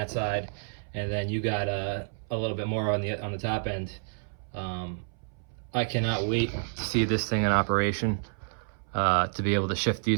side, and then you got a little bit more on the top end. I cannot wait to see this thing in operation, to be able to shift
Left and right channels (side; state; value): left; silent; 58 dB below the other